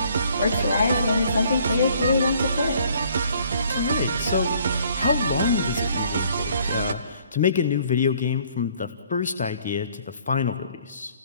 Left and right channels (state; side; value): inverted; both; correlation -0.61